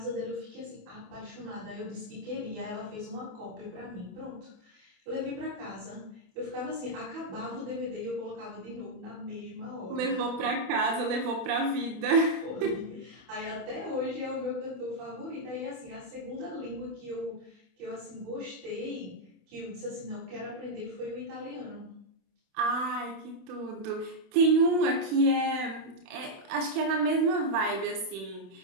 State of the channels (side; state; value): left; late; 28 ms